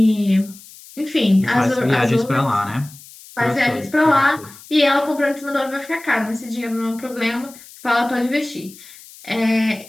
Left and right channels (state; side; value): noise; left; hiss, 20 dB below the sound